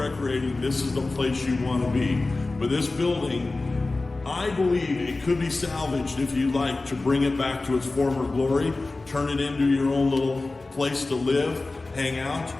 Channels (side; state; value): right; quieter; 3.3 dB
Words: this is the place you want to be. But this building, I believe it could be salvaged if you like to bring it back to its former glory, turn it into your own little place to live, hang out,